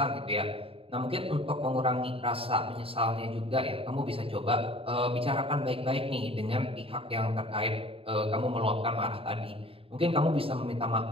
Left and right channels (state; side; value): late; left; 0.27 ms